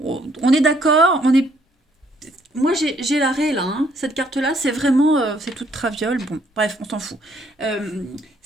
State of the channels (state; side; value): normal; both; correlation 0.67